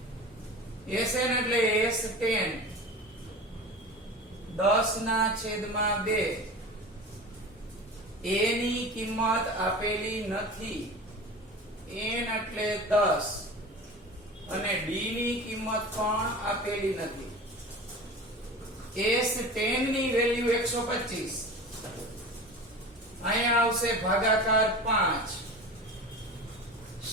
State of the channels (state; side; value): normal; both; correlation 0.34